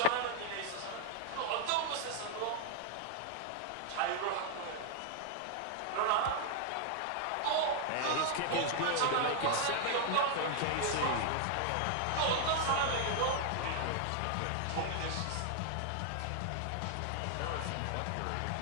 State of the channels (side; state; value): both; different; correlation 0.00